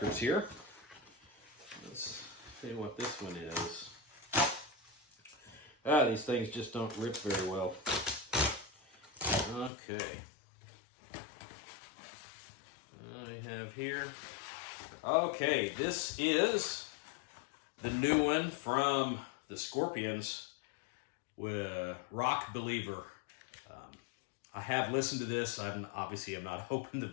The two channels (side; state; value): right; drops out; at 9.7 s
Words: here. Let's see what this one is. These things just don't rip very well. Okay. I have here. Okay, this is the new one from the Scorpions with Rock Believer. I have listened to this. I'm not open to